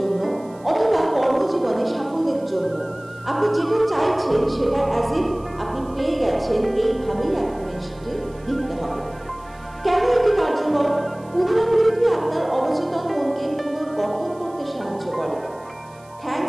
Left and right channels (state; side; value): noise; right; hiss, 28 dB below the sound